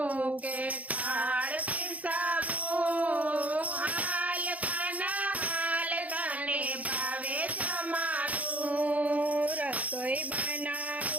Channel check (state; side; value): late; left; 0.072 ms